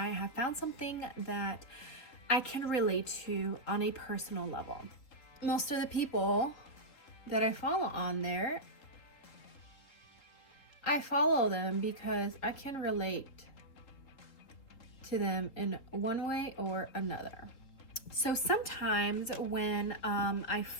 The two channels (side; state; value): right; late; 3.6 ms